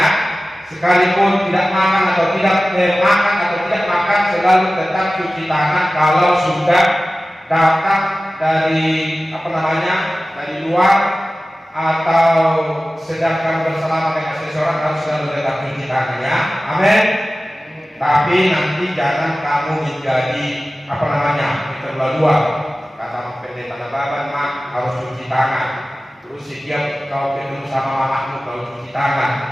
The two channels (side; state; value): both; normal; correlation 0.96